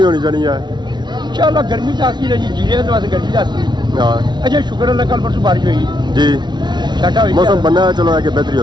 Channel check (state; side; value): late; left; 0.21 ms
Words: होनी चाहिए है। इंशाल्लाह गर्मी तो आती है जी, जीने तो वास्ते गर्मी आती है। हाँ अच्छा शुक्र अल्लाह कल परसों बारिश हुई जी, छाटा हुई मौसम बनना है चलो आगे बेहतरी